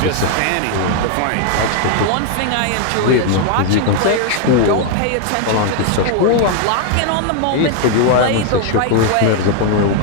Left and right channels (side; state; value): both; different; correlation 0.00